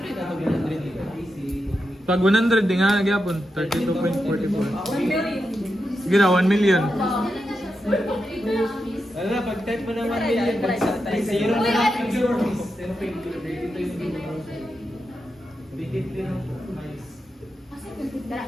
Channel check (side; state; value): both; normal; correlation 0.87